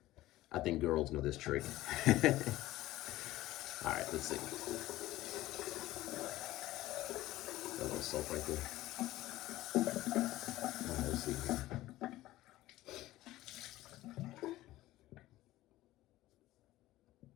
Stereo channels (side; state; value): right; quieter; 16.3 dB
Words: I think girls know this trick. All right, let's see. A little soap right there. All right, let's see here.